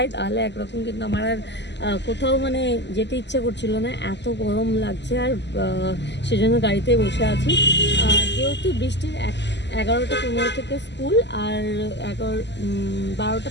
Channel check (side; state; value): right; late; 0.51 ms